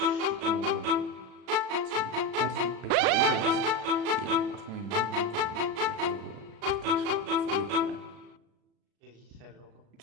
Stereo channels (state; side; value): late; left; 36 ms